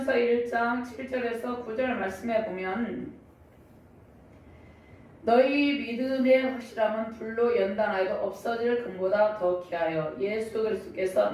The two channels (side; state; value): both; identical; correlation 1.00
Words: 1장 7절에서 9절 말씀에 보면 너희 믿음의 확실함은 불로 연단하여도 없어질 금보다 더 귀하여 예수 그리스도께서